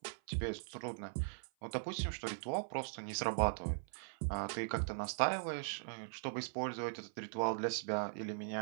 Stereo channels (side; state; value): left; silent; 51 dB below the other